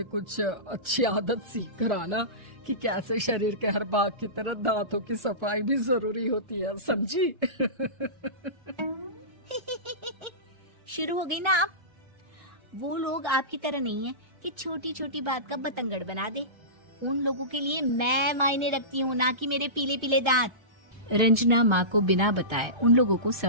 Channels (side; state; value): left; late; 1.3 ms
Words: कुछ अच्छी आदत सीख कर आना कि कैसे शरीर के हर भाग की तरह दांतों की सफाई भी जरूरी होती है, समझी? शुरू हो गई ना आप। वो लोग आपकी तरह नहीं है कि छोटी छोटी बात का बतंगड़ बना दे। उन लोगों के लिए मैं मायने रखती हूँ, ना कि मेरे पीले पीले दांत। रंजना माँ को बिना बताए उन लोगों को